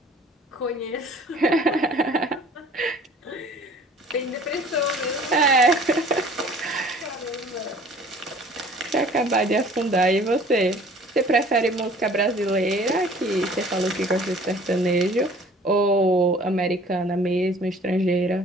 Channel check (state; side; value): normal; both; correlation 0.50